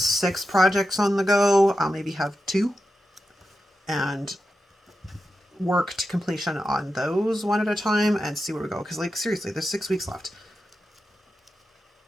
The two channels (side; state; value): both; normal; correlation 0.89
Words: projects on the go. I'll maybe have 2 and work to completion on those one at a time and see where we go. Because like, seriously, there's 6 weeks left.